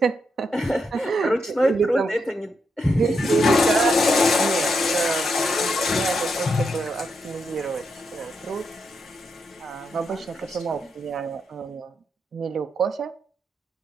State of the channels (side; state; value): both; normal; correlation 0.82